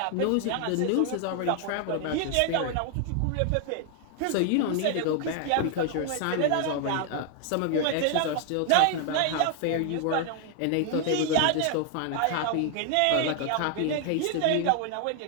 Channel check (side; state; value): both; different; correlation 0.00